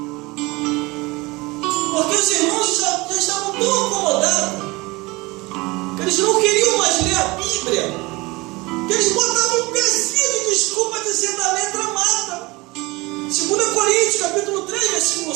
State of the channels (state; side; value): quieter; left; 23.3 dB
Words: Porque os irmãos já estavam tão acomodados que eles não queriam mais ler a Bíblia, que eles botavam um pezinho de desculpa dizendo: a letra mata. 2 Coríntios, capítulo 3, versículo